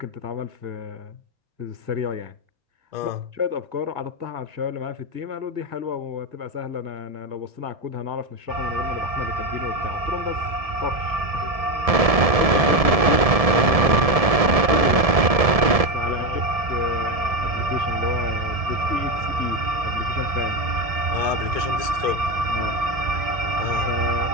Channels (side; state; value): left; late; 1.7 ms